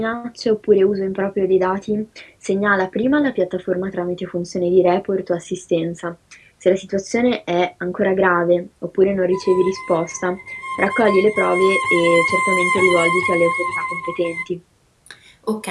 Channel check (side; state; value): both; identical; correlation 1.00